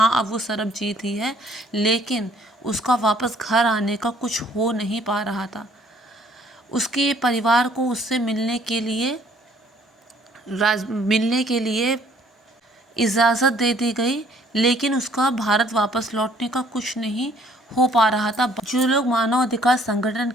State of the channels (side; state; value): both; normal; correlation 0.61